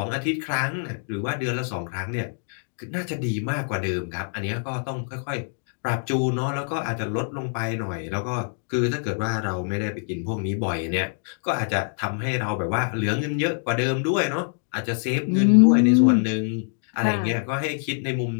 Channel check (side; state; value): right; silent; 62 dB below the other